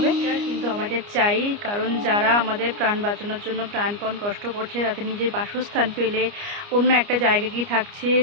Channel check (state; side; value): late; left; 29 ms